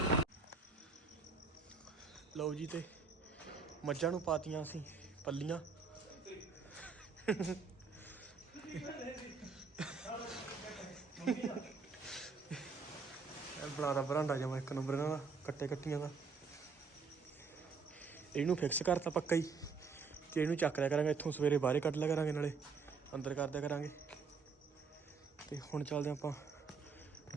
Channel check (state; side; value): quieter; left; 5.0 dB